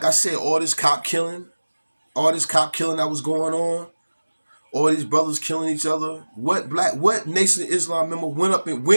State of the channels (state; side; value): inverted; both; correlation -1.00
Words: I said, all this cop killing that was going on, all these brothers killing each other. What Nation of Islam member